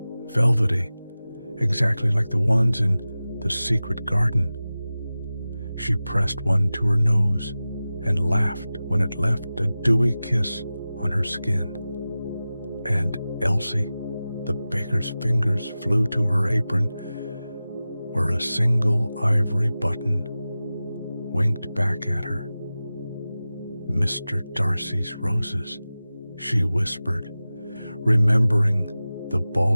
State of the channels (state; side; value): inverted; both; correlation -0.96